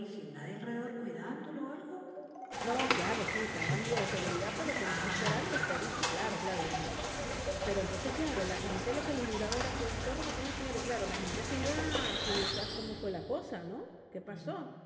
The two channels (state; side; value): identical; both; correlation 1.00